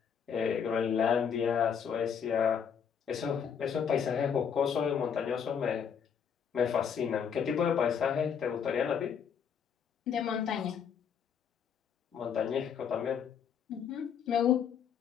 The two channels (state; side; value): quieter; right; 7.4 dB